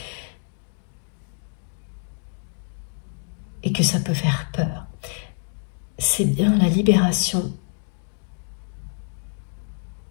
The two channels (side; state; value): right; silent; 60 dB below the other